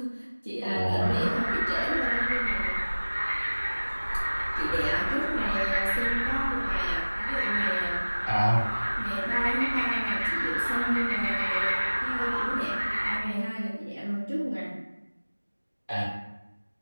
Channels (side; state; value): both; inverted; correlation -1.00